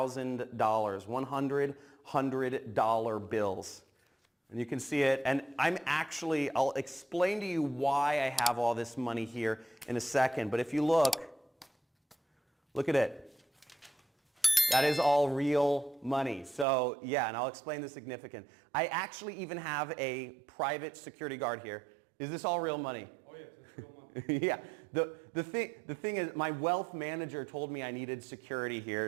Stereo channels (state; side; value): drops out; left; at 16.7 s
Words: $100 bills. And you can see it, and I'll explain to you why I have all this money here in a second, but if you look at it. That is all real money. So yeah, and I'll explain the significance. I actually even have a private security guard here. Is this all real money? Oh yeah, it's real money. Yeah. The thing is, my wealth manager told me I needed security